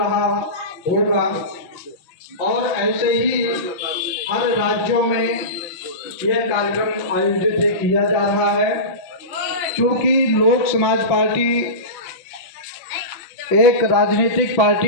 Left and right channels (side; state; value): right; late; 5.7 ms